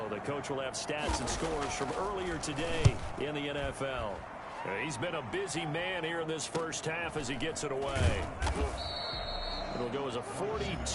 The coach will have stats and scores from earlier today in the NFL. He's been a busy man here in this first half as he gets it away. It'll go as a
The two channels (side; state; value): both; identical; correlation 1.00